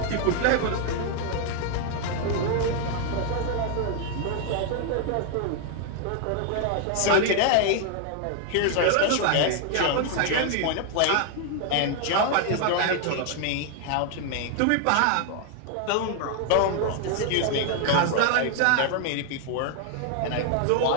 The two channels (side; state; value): both; different; correlation 0.00